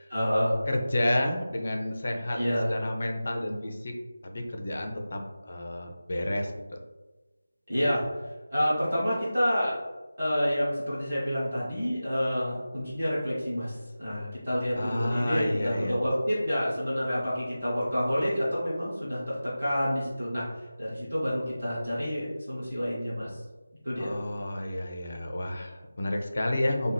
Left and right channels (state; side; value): inverted; both; correlation -0.96